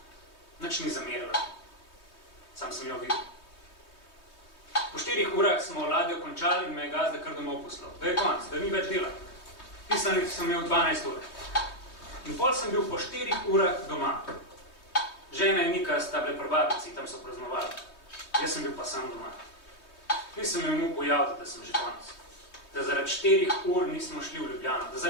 nič ni zamerila. Sam sem jo videl. Po 4 urah smo ladjo končali in me je gazda kar domov poslal. Da je konc, da ni več dela. Pisanih sem imel 12 ur. In pol sem bil po 4 urah doma. Žena in Nika sta bile pri babici, tam so praznovali. Jaz sem bil pa sam doma. Nisem imel mu pojaviti, da sem že konec. Da zaradi 4 ur nismo šli v Ljubljano, da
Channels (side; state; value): right; late; 3.2 ms